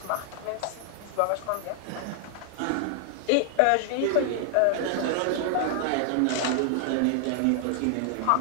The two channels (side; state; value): both; different; correlation 0.00